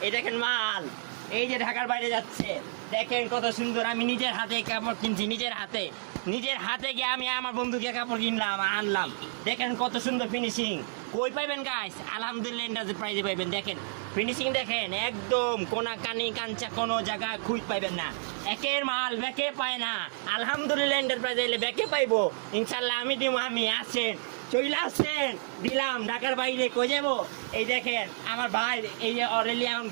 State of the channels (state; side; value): silent; left; digital silence